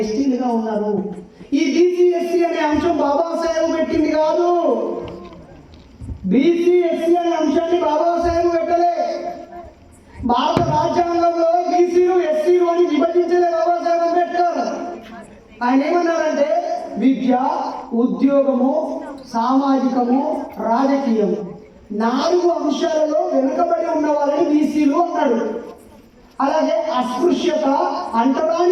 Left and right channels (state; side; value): identical; both; correlation 1.00